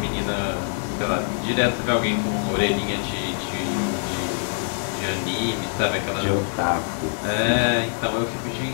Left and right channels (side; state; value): right; silent; digital silence